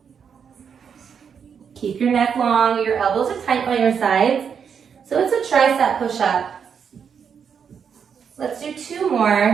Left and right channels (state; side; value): quieter; left; 7.0 dB